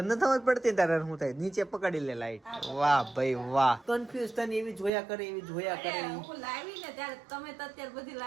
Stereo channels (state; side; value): drops out; left; at 4.9 s